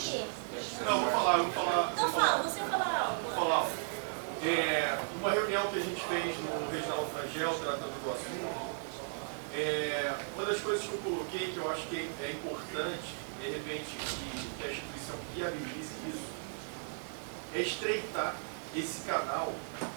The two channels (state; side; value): silent; left; digital silence